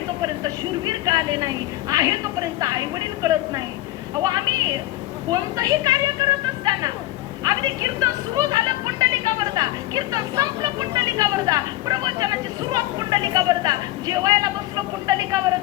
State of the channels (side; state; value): right; quieter; 16.7 dB